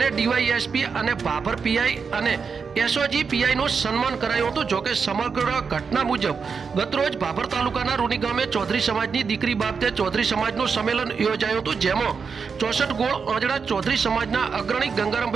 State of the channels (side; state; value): left; quieter; 5.6 dB